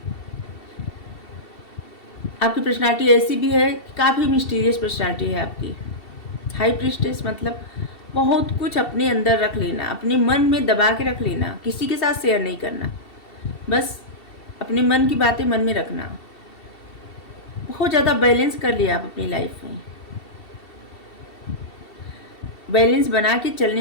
आपकी पर्सनालिटी ऐसी भी है, काफ़ी मिस्टीरियस पर्सनालिटी है आपकी। हाई प्रीस्टेस मतलब बहुत कुछ अपने अंदर रख लेना, अपने मन में दबा के रख लेना, किसी के साथ शेयर नहीं करना, बस अपने मन की बातें मन में रखना। बहुत ज़्यादा बैलेंस कर लिया आप अपनी लाइफ में, बैलेंस बना के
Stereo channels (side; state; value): right; late; 2.7 ms